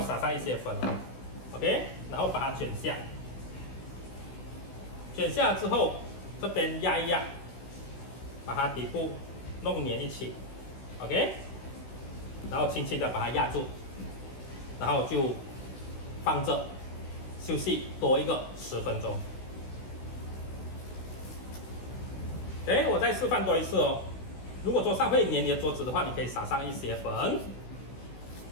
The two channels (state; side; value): late; right; 16 ms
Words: 撒上一些粉 ，OK， 然后把它卷下，卷下之后这边压一压，把它底部弄粘一起 ，OK， 然后轻轻的把它压住，然后就放着休息多一个10分钟。我再示范多一次哦。如果桌上会粘你的桌子的话，你可以撒上一些粉，